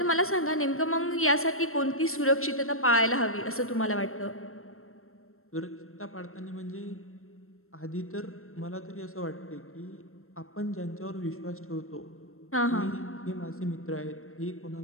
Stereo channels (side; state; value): right; late; 0.62 ms